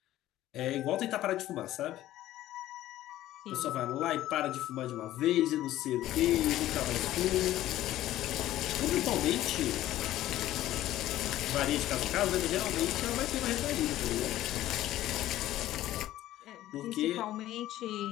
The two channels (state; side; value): quieter; right; 14.3 dB